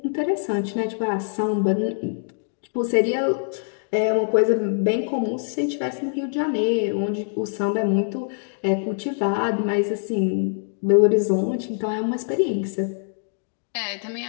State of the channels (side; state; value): right; silent; digital silence